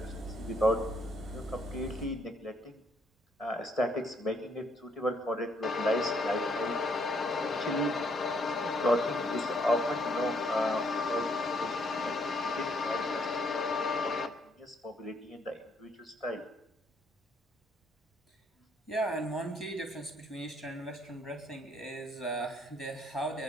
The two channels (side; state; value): both; normal; correlation 0.69